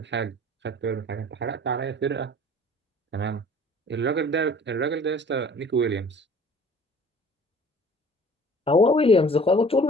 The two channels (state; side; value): normal; both; correlation 0.49